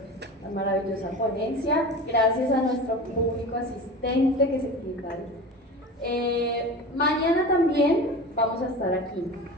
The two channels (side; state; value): both; normal; correlation 0.33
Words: la maravillosa ponencia. Gracias a nuestro público asistente que se quita. Mañana también vamos a estar aquí.